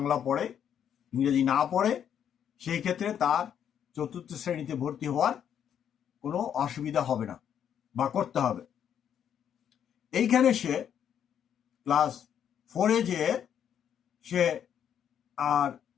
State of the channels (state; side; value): quieter; right; 9.0 dB